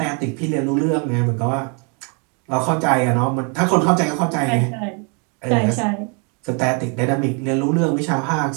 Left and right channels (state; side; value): quieter; left; 35.9 dB